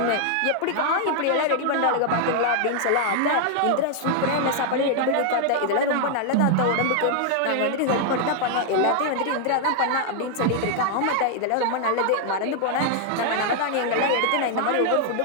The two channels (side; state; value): both; different; correlation 0.00